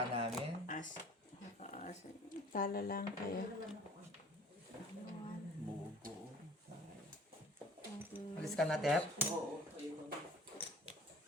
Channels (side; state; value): both; normal; correlation 0.48